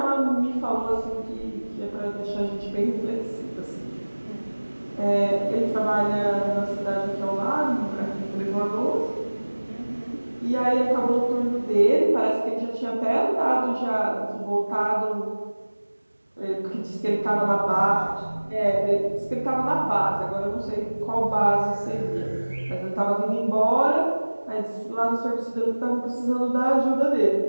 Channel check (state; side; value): inverted; both; correlation -1.00